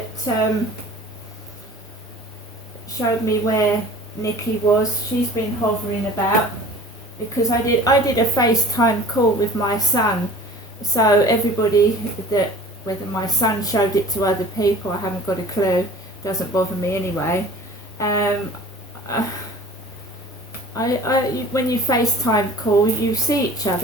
showed me where Nikki was, she's been hovering about because I did a FaceTime call with my son. So everybody that, whether my son showed it to other people, I haven't got a clue, doesn't bother me anyway. When you FaceTime call, you see each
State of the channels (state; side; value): normal; both; correlation 0.44